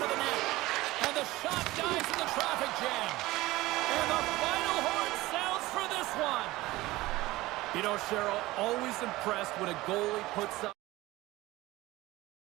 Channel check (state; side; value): quieter; left; 18.6 dB